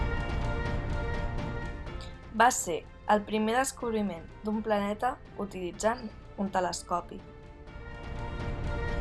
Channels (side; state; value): both; identical; correlation 1.00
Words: Va ser el primer descobriment d'un planeta utilitzant un telescopi.